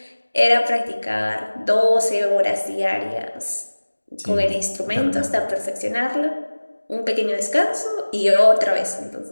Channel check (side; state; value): both; inverted; correlation -1.00